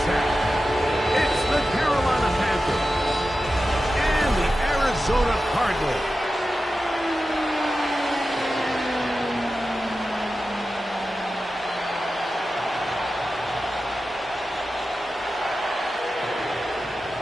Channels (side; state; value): both; normal; correlation 0.93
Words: tap. It's the Carolina Panthers and the Arizona Cardinals.